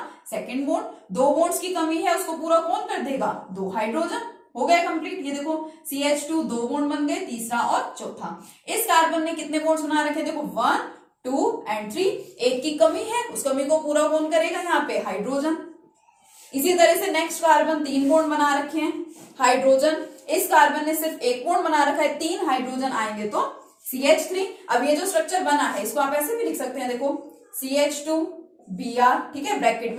सेकंड बॉन्ड। 2 बॉन्ड्स की कमी है, उसको पूरा कौन कर देगा, 2 हाइड्रोजन। हो गया कंप्लीट। ये देखो CH2 2 बॉन्ड बन गए, तीसरा और चौथा। इस कार्बन ने कितने बॉन्ड्स बना रखे, देखो 1 2 एंड 3, एक की कमी है, उस कमी को पूरा कौन करेगा, यहाँ पे हाइड्रोजन। इसी तरह से नेक्स्ट कार्बन 3 बॉन्ड बना रखे हैं, हाइड्रोजन। इस कार्बन ने सिर्फ 1 बॉन्ड बना रखा है, 3 हाइड्रोजन आएंगे तो CH3। अब ये जो स्ट्रक्चर बना है इसको आप ऐसे भी लिख सकते हैं, देखो CH2 Br, ठीक है, ब्रैकेट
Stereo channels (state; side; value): identical; both; correlation 1.00